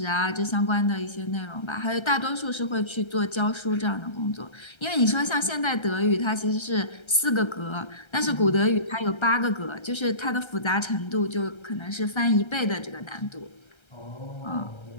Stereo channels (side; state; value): right; late; 1.3 ms